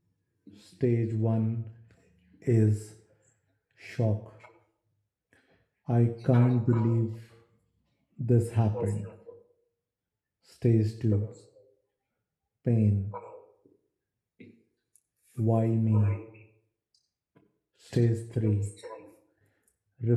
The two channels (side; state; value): both; identical; correlation 1.00